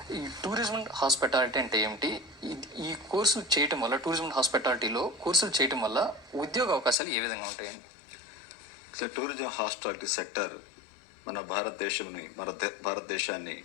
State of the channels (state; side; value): drops out; right; at 7.0 s